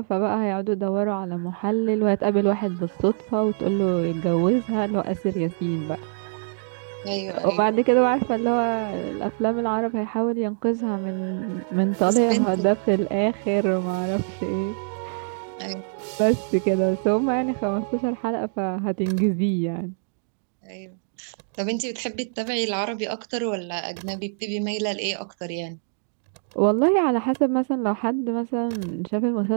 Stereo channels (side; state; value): left; silent; digital silence